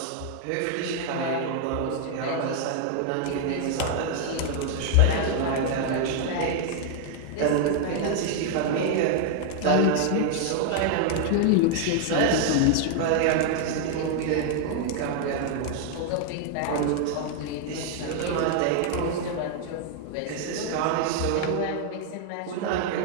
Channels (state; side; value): different; both; correlation 0.00